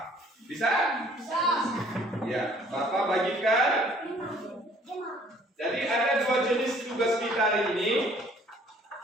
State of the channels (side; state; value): both; normal; correlation 0.57